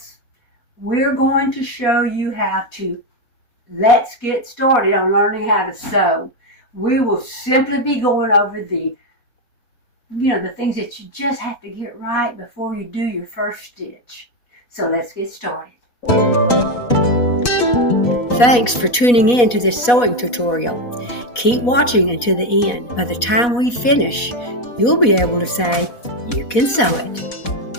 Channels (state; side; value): late; right; 4.1 ms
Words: we're going to show you how to let's get started on learning how to sew. We will simply be going over the things that you just have to get right before you do your first stitch. So let's get started. Thanks for tuning in to this sewing tutorial. Keep watching until the end. By the time we finish, you'll be able to say, you can sew it.